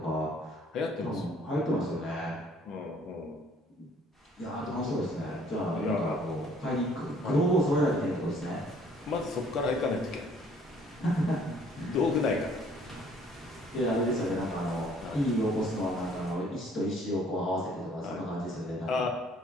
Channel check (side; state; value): both; normal; correlation 0.59